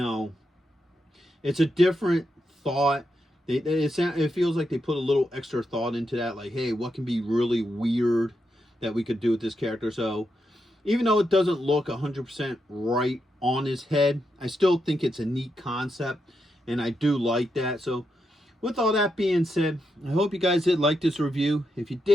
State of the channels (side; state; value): both; normal; correlation 0.84